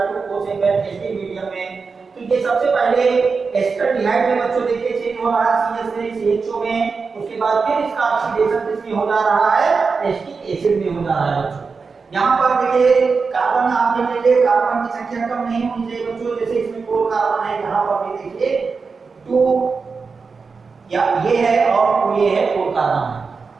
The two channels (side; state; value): left; quieter; 4.8 dB